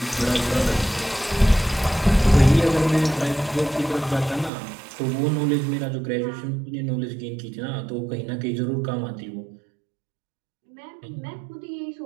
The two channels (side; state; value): left; drops out; at 4.5 s